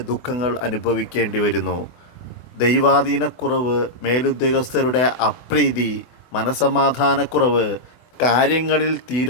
ദുഃഖങ്ങൾ അനുഭവിക്കേണ്ടി വരുന്നു. ദൈവാധീനക്കുറവ്, മേലുദ്യോഗസ്ഥരുടെ അപ്രീതി, മനസമാധാനക്കുറവ്, കാര്യങ്ങളിൽ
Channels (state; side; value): late; right; 24 ms